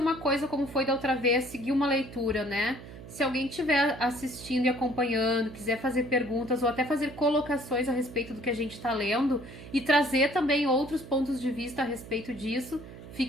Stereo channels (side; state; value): right; noise; hum, 15 dB below the sound